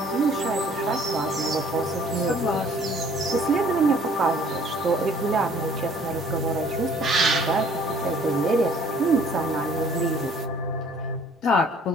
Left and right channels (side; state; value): both; normal; correlation 0.56